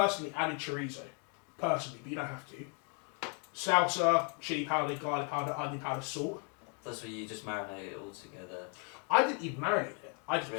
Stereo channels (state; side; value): quieter; right; 38.4 dB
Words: added chorizo. Personally, but you don't have to. Salsa, chili powder, garlic powder, onion powder, salt. That's where you just marinate it all together. I didn't even marinate it. I just put